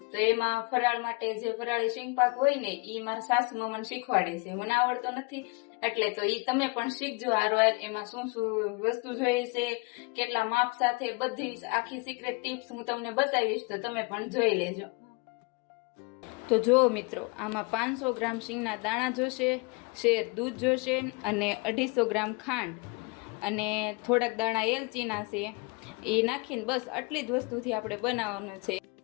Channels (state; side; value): quieter; right; 29.8 dB